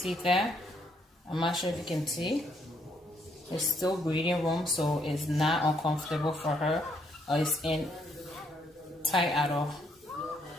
that? I'm not sure if you can see. It's still breathing room, so it's not uncomfortable for her, or it's in tight at all.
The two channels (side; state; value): both; normal; correlation 0.71